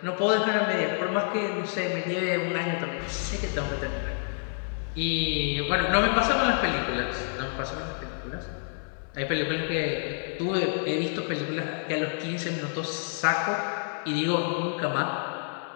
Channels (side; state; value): right; silent; 59 dB below the other